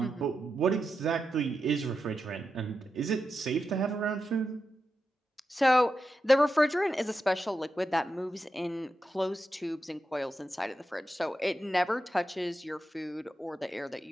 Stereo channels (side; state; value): both; normal; correlation 0.88